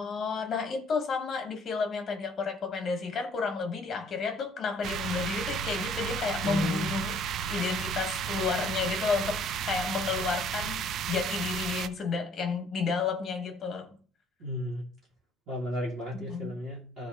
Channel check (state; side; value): normal; both; correlation 0.58